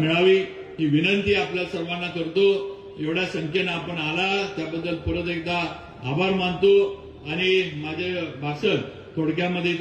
ही विनंती आपल्या सर्वांना करतो. एवढ्या संख्येनं आपण आला त्याबद्दल परत एकदा आभार मानतो आणि माझे भाषण थोडक्यामध्ये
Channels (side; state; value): both; identical; correlation 1.00